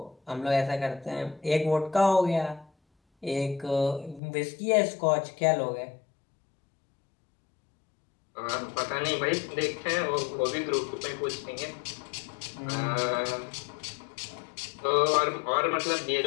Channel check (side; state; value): right; drops out; at 4.2 s